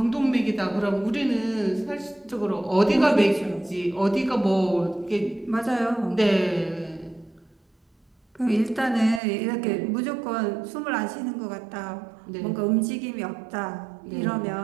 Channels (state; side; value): drops out; left; at 9.2 s